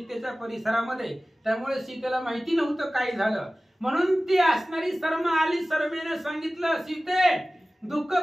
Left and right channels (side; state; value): both; normal; correlation 0.97